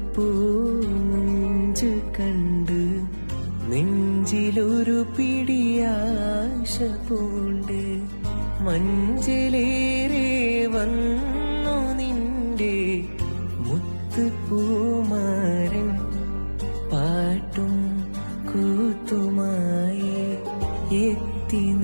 മുഞ്ച് കണ്ട് നെഞ്ചിലൊരു പിടിയാശ പൂണ്ട് മഞ്ചലേറെ വന്നു നിന്റെ മുത്തുപൂമാരൻ പാട്ടും കൂത്തുമായി എത്തി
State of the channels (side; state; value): both; inverted; correlation -1.00